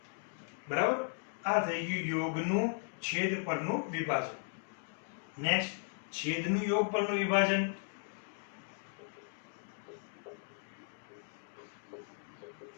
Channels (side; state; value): right; silent; digital silence